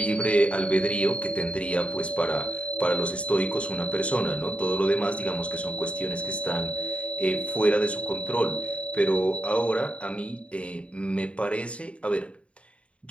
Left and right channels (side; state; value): right; late; 0.061 ms